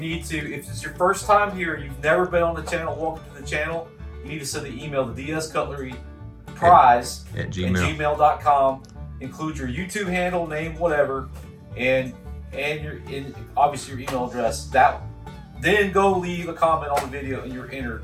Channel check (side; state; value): both; identical; correlation 1.00